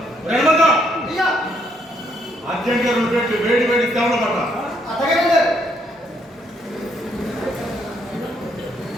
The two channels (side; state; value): both; normal; correlation 0.72